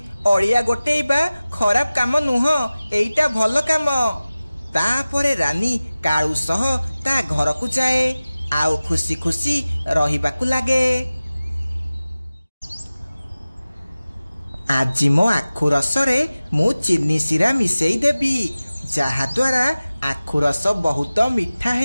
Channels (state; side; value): inverted; both; correlation -0.97